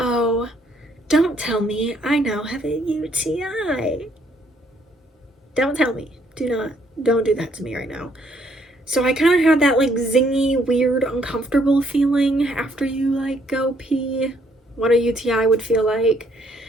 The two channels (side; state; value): both; normal; correlation 0.68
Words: don't tell me I now have a UTI. Don't tell me. Don't do that to me right now. So I kind of had that like zingy, weird, uncomfortable feeling after you like go pee, what a UTI would feel like.